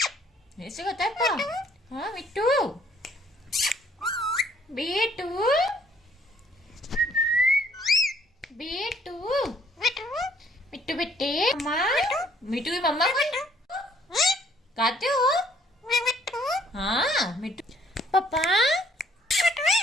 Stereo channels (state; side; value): normal; both; correlation 0.62